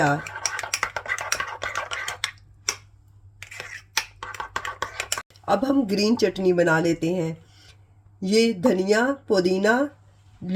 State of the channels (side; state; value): both; identical; correlation 1.00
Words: अब हम ग्रीन चटनी बना लेते हैं। ये धनिया, पुदीना,